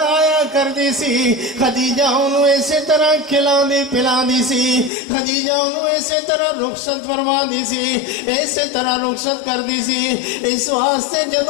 کر دی سی خدیجہ انہوں اسی طرح کھلان دی پلان دی سی، خدیجہ انہوں اسی طرح رخصت فرما دی سی، اسی طرح رخصت کر دی سی۔ اس واسطے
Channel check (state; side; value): drops out; right; at 4.9 s